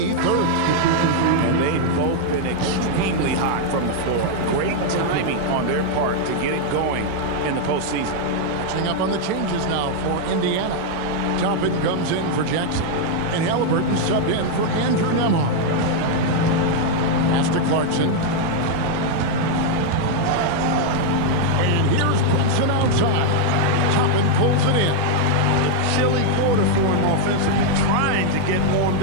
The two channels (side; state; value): both; different; correlation 0.00